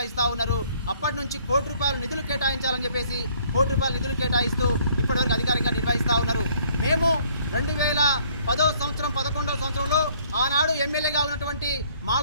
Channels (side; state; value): both; inverted; correlation -0.61